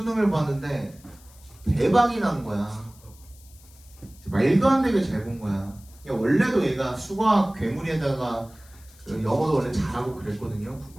봤는데 대박이 난 거야. 말도 안 되게 잘 본 거야. 원래도 얘가 수학 괴물에다가 영어도 원래 잘하고 그랬거든요.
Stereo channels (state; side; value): noise; left; hiss, 25 dB below the sound